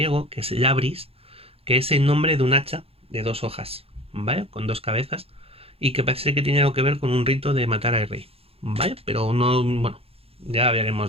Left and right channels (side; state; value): left; late; 0.28 ms